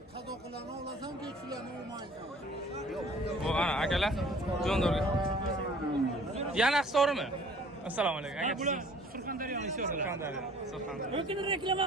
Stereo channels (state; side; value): normal; both; correlation 0.52